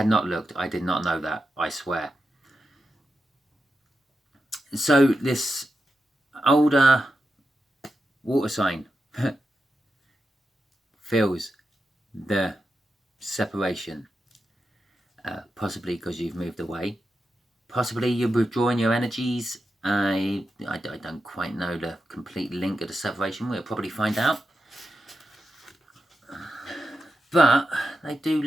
not looked. I did not know that, I swear. So this older water sign feels the separation, possibly because you've moved away, possibly you're withdrawing your energies. I don't quite know the complete link of the separation. We'll probably find out. But they do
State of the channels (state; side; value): normal; both; correlation 0.88